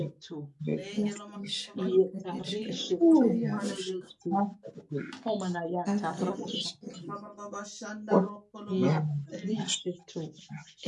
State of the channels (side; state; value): both; identical; correlation 1.00